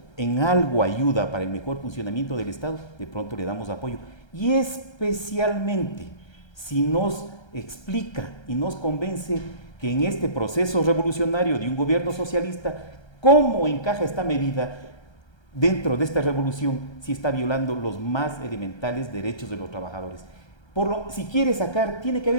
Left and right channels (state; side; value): late; right; 1.3 ms